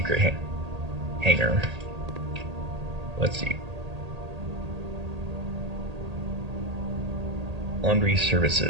hanger. Let's see. Laundry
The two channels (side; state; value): left; late; 1.8 ms